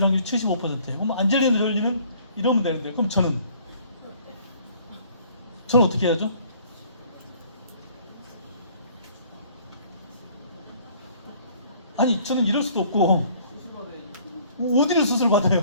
확률이 75%예요. 그럼 안젤리나 졸리는 이러면 되는데 그럼 저는 어떻게 해야죠? 아니 저는 이럴 수도 없고 어디를 수술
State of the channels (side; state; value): both; inverted; correlation -0.56